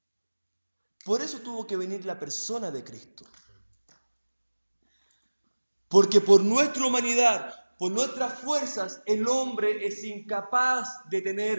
Por eso tuvo que venir la persona de Cristo. Porque por nuestra humanidad, por nuestras fuerzas, el hombre es incapaz de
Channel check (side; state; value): both; inverted; correlation -1.00